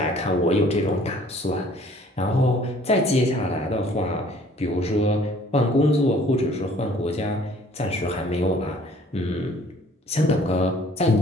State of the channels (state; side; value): normal; both; correlation 0.55